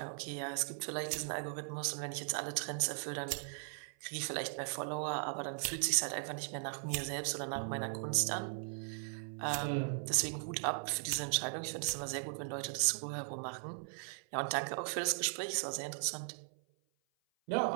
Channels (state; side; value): silent; left; 52 dB below the other